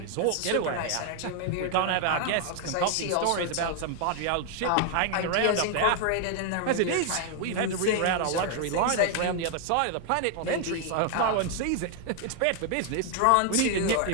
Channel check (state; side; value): different; both; correlation 0.00